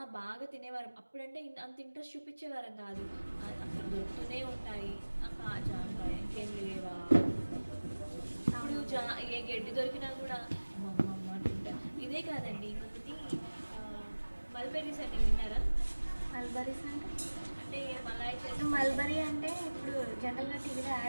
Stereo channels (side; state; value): both; inverted; correlation -1.00